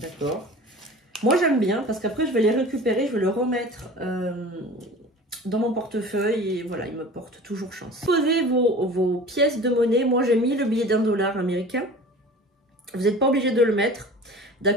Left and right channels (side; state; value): both; normal; correlation 0.40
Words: Moi, j'aime bien parce qu'après, je vais les récupérer, je vais le remettre dans mon portefeuille et voilà, il me porte toujours chance. Posez vos pièces de monnaie. Moi, j'ai mis le billet d'$, américain. Vous n'êtes pas obligé de le mettre.